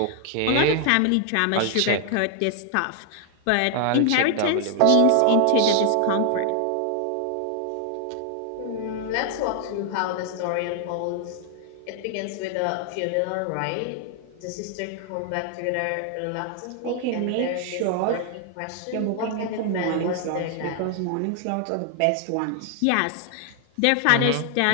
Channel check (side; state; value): both; different; correlation 0.00